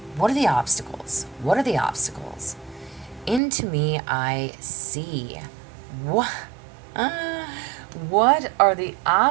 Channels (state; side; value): drops out; left; at 3.4 s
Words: What are the obstacles? What are the obstacles? Into me, I see. What? What are the